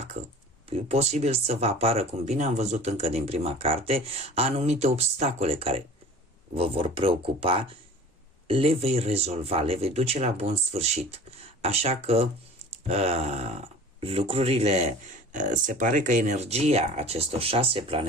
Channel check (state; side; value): normal; both; correlation 0.42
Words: e posibil să vă apară, cum bine am văzut încă din prima carte, anumite obstacole care vă vor preocupa, le vei rezolva, le vei duce la bun sfârșit. Așa că lucrurile, se pare că energia acestor 6